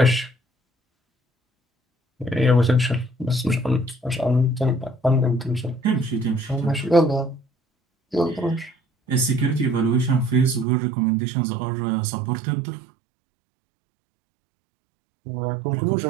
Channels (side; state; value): left; drops out; at 10.7 s